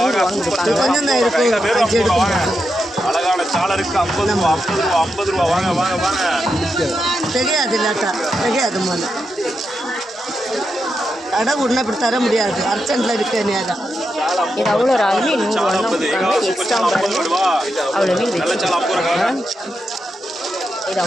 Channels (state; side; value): normal; both; correlation 0.86